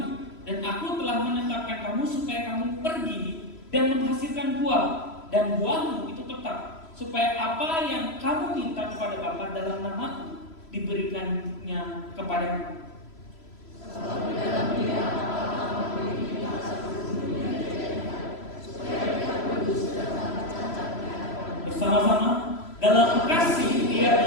Dan aku telah menetapkan kamu supaya kamu pergi dan menghasilkan buah, dan buahmu itu tetap, supaya apa yang kamu minta kepada Bapa dalam namaku diberikannya kepadamu. Bersama-sama dalam kasih Dia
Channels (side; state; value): right; late; 3.0 ms